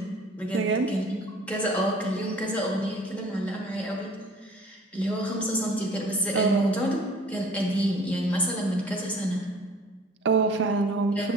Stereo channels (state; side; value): normal; both; correlation 0.49